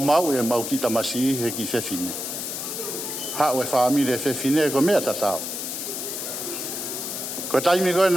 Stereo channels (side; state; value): left; noise; hiss, 5 dB below the sound